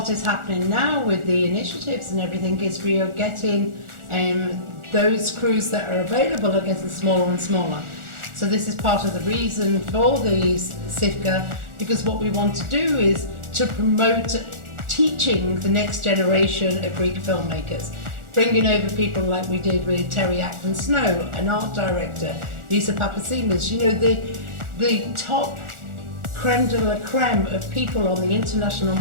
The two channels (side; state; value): left; late; 1.4 ms